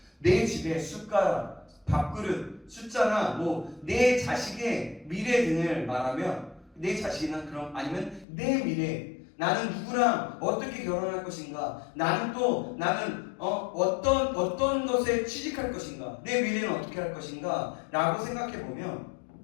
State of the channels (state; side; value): drops out; right; at 8.2 s